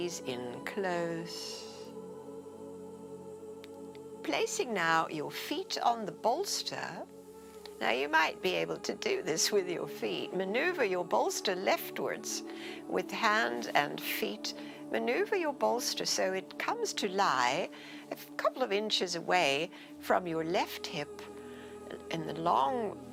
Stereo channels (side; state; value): both; identical; correlation 1.00